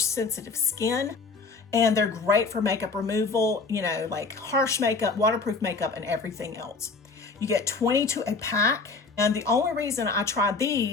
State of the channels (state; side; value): quieter; right; 4.2 dB